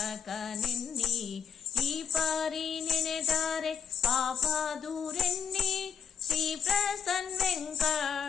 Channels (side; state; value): right; quieter; 7.5 dB